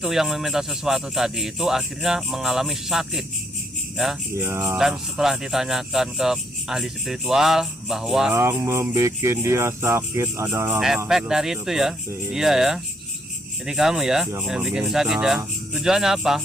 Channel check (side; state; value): both; normal; correlation 0.71